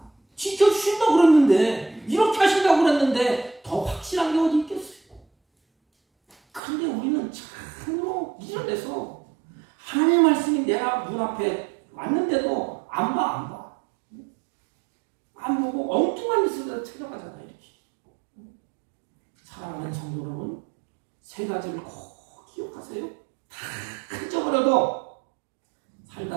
지켜주신다고 그랬는데, 이렇게 하신다고 그랬는데 더 확실한 게 어디 있겠어요? 그런데 우리는 참으로 미련해서 하나님의 말씀이 내가 문 앞에 왔는데도 안 봐. 안 보고 엉뚱한 짓을 찾아가잖아. 이렇게. 사랑하는 성도 여러분, 세 가지를 꼭 기억하세요. 다 잊어버려도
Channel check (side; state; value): left; drops out; at 6.6 s